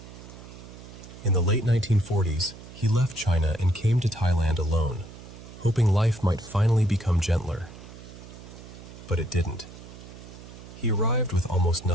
In the late 1940s, he left China and came to Thailand alone, hoping life might finally become gentler. But it didn't. He arrived with almost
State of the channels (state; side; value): noise; right; hum, 16 dB below the sound